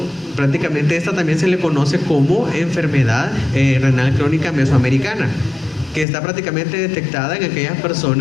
Prácticamente esta también se le conoce como enfermedad renal crónica mesoamericana, que está prácticamente detectada en aquellas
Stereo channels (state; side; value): drops out; right; at 6.1 s